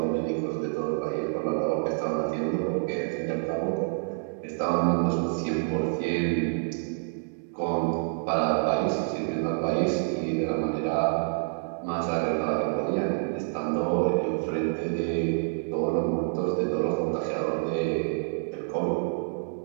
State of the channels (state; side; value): silent; left; digital silence